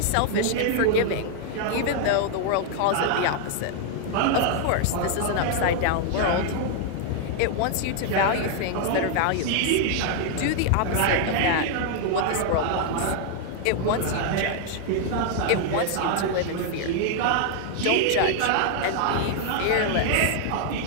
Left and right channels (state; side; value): different; both; correlation 0.00